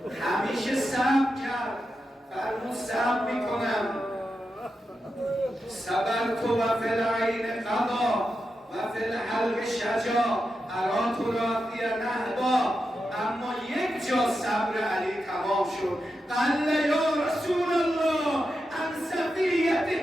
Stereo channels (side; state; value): both; normal; correlation 0.88